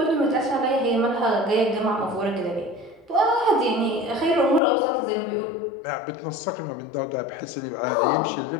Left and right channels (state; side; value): drops out; right; at 4.6 s